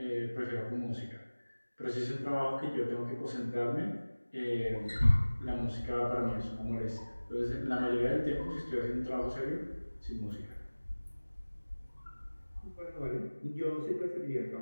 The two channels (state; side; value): inverted; both; correlation -1.00